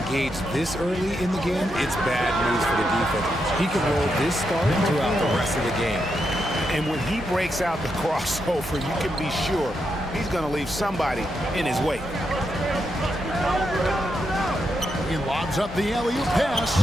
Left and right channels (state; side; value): normal; both; correlation 0.83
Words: this early in the game, it's bad news for the defense. He can roll this start throughout the rest of the game. And when he breaks out the crossover, you can be sure he's going to leave somebody in his wake. He lobs up the alley-oop pass,